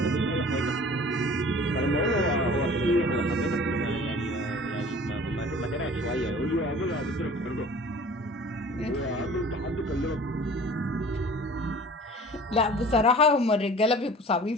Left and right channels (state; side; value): normal; both; correlation 0.45